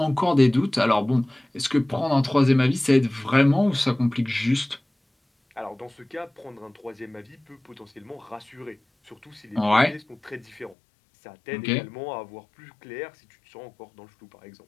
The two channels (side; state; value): right; drops out; at 10.8 s